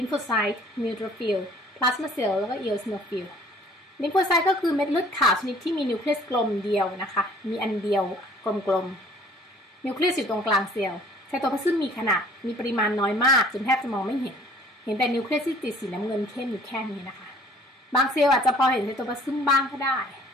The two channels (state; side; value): normal; both; correlation 0.54